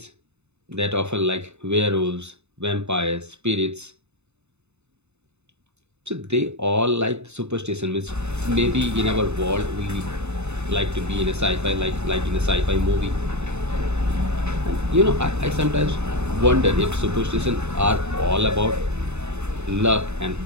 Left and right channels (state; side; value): late; left; 0.81 ms